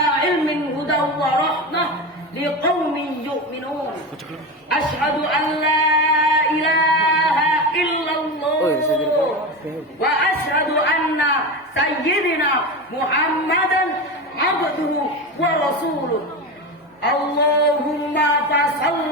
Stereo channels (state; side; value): normal; both; correlation 0.22